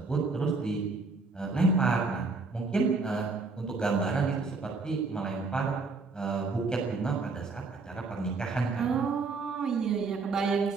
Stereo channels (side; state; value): left; quieter; 4.0 dB